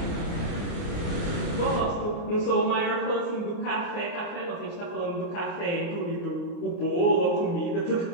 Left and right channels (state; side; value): late; right; 29 ms